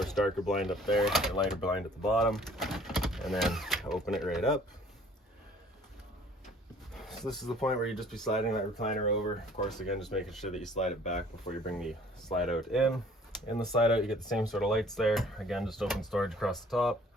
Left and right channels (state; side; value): normal; both; correlation 0.54